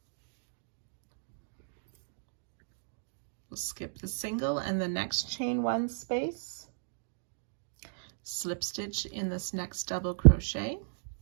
We'll skip the single and the next chain 1 space, slip stitch in this next double crochet,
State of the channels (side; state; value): left; silent; digital silence